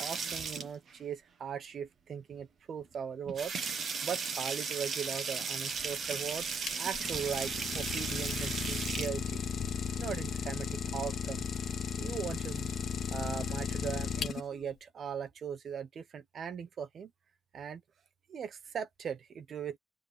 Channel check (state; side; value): normal; both; correlation 0.70